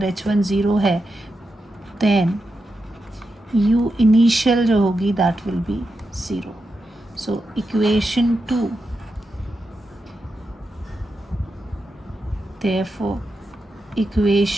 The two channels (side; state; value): both; normal; correlation 0.88